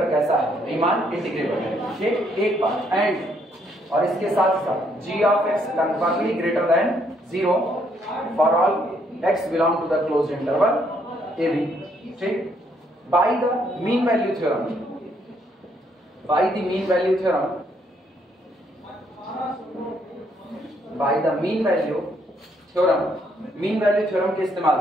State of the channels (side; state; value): both; normal; correlation 0.71